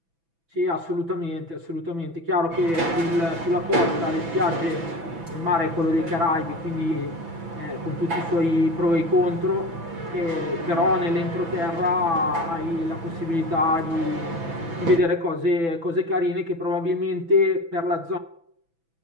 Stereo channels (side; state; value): left; late; 6.0 ms